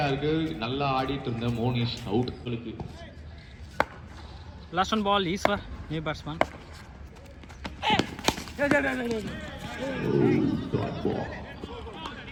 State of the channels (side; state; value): both; identical; correlation 1.00